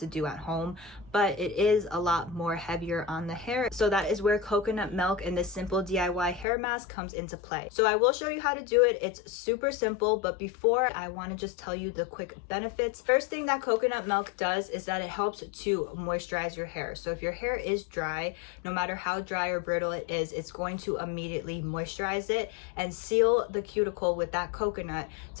do at home, but it is a lot more heavier on the hair. So that is where coconut milk and this simple DIY hair mask comes into play. So I will show you how to do it. It's super simple, but before I want to just tell you the quick benefits. First thing that coconut milk does is that it helps to moisturize your hair. So if your hair is dry, no matter how dry or brittle it is, it's going to immediately moisturize it and seal the cuticle with that coconut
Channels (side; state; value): right; drops out; at 6.5 s